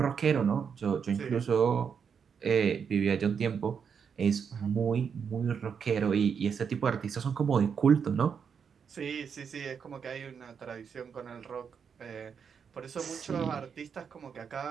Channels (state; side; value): quieter; left; 6.7 dB